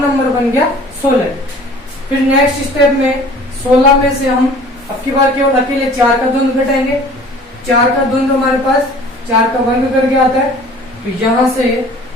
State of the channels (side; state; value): both; normal; correlation 0.48